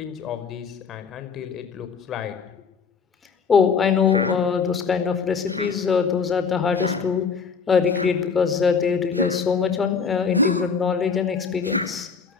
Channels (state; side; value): quieter; right; 5.7 dB